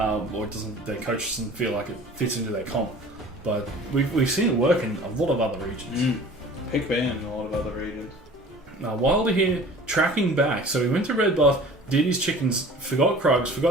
their coach doesn't feel like it fits into their comp, but we've seen it work in a lot of other regions. Pick ban in a lot of other regions. Wilder here tracking back, so he went to red buff, did his chickens, forgot Krugs,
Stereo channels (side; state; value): both; normal; correlation 0.45